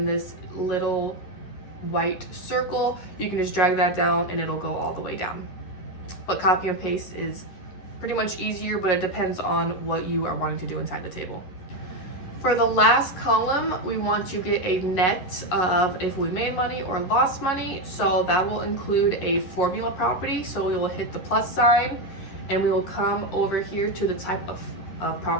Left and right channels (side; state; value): right; late; 11 ms